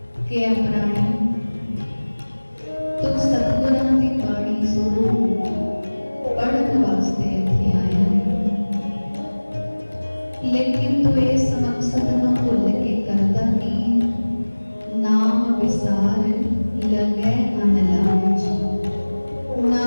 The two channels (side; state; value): both; inverted; correlation -1.00